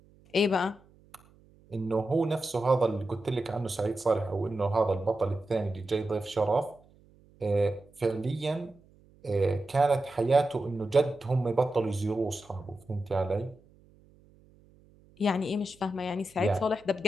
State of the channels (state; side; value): noise; right; hum, 28 dB below the sound